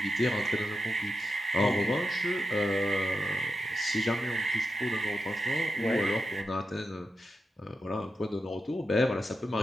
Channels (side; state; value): both; normal; correlation 0.88